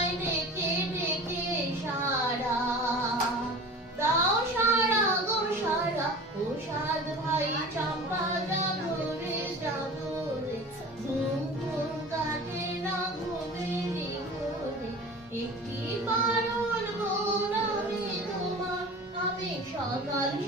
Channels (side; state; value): both; normal; correlation 0.38